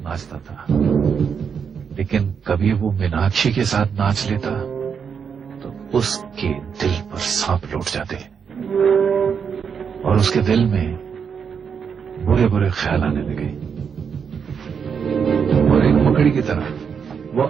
नाचता था, लेकिन कभी वो मीनाक्षी के साथ नाच लेता तो उसके दिल पर सांप लौट जाते, और उसके दिल में बुरे बुरे ख्याल आने लगे, और एक मकड़ी की तरह वो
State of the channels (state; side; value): quieter; left; 6.7 dB